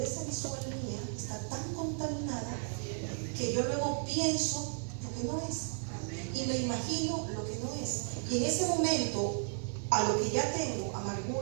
visual mía está tan contaminada que yo luego pienso lo que no es. Y me imagino lo que no es. Y en ese momento, a lo que ya tengo,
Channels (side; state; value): left; silent; 55 dB below the other